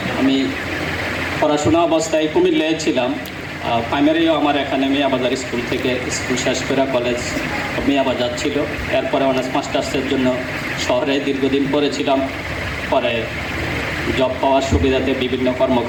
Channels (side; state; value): both; identical; correlation 1.00